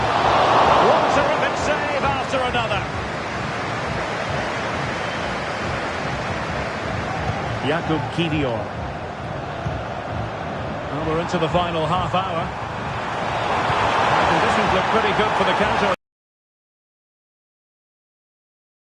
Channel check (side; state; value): both; identical; correlation 1.00